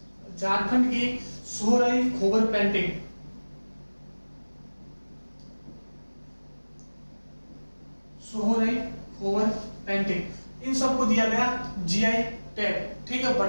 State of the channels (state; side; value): inverted; both; correlation -1.00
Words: इन सबको दिया गया जीआई टैग। ठीक है,